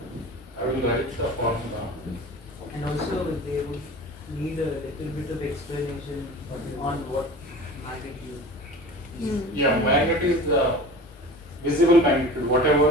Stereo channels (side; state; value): both; normal; correlation 0.38